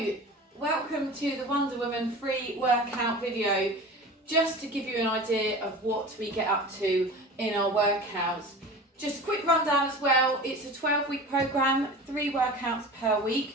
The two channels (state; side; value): normal; both; correlation 0.36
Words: welcome to the Wonder Woman free workout video. Just to give you an idea of what we get up to in our workouts. Just a quick rundown as well, it's a 12-week program, 3 workouts per